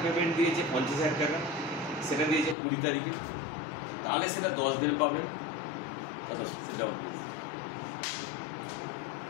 পেমেন্ট দিয়েছে 50,000 টাকা, সেটা দিয়েছে 20 তারিখে, তাহলে সেটা 10 দিন পাবেন।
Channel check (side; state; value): right; drops out; at 2.6 s